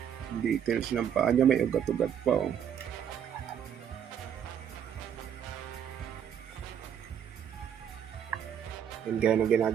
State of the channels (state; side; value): quieter; left; 8.7 dB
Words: Details ng paa niya, may ugat-ugat pa. And gaya ng